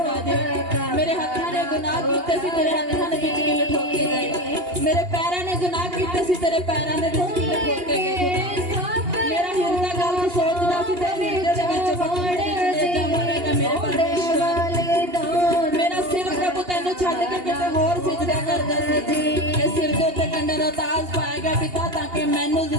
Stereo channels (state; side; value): late; left; 2.8 ms